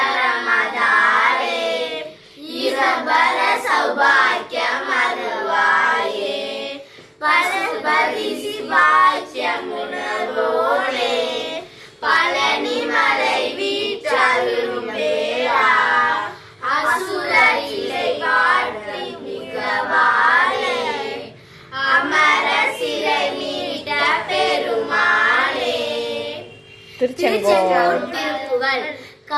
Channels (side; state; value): both; identical; correlation 1.00